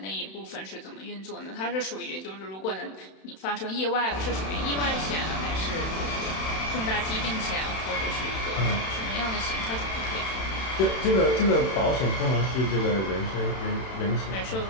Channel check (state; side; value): late; right; 31 ms